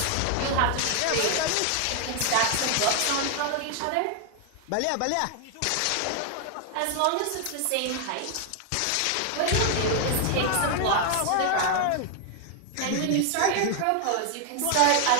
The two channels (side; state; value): both; different; correlation 0.00